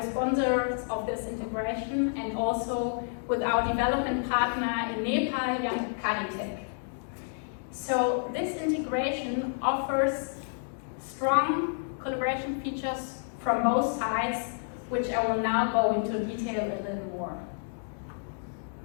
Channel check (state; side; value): silent; right; digital silence